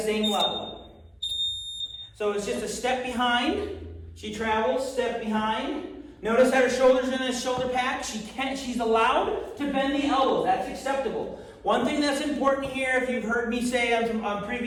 level. So it's just a step behind. She travels, step behind. Notice that her shoulders are in this shoulder pack. She's allowed to bend the elbows. That's acceptable. One thing that's important here, if you've heard me say on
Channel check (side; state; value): both; identical; correlation 1.00